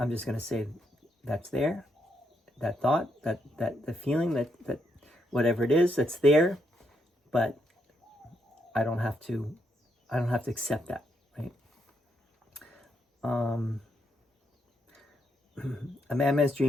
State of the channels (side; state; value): both; normal; correlation 0.78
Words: just going to say that's there. That thought, that the feeling, that whatever it is, that's there. But I don't have to accept that, right? A madman's